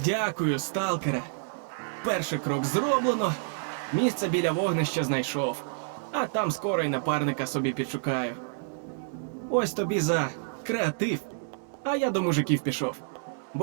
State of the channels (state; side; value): silent; left; digital silence